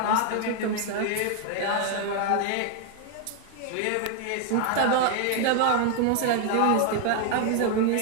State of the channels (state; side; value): different; both; correlation 0.00